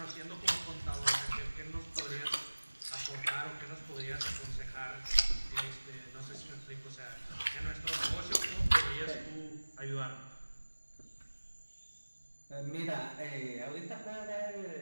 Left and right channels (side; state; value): both; inverted; correlation -1.00